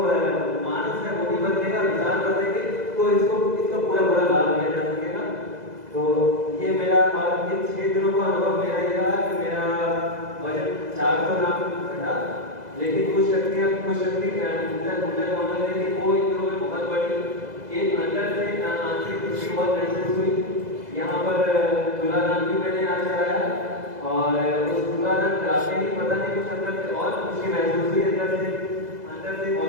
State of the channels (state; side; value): late; left; 2.0 ms